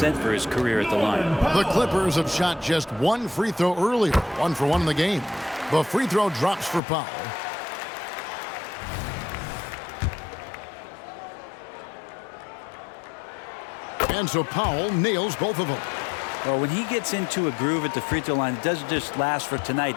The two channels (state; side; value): drops out; right; at 6.8 s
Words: for his career at the line. The Clippers have shot just 1 free throw earlier. 1 for 1 in the game. The free throw drops for Powell. And so Powell nails both of them. Well, when he gets into a groove at the free throw line, it doesn't just last for tonight.